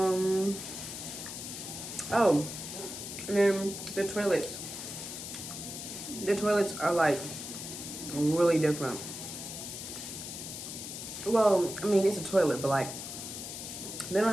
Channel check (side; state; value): left; noise; hiss, 8 dB below the sound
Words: and then the toilets. The toilets are like really different. Well, I mean, it's a toilet, but like they don't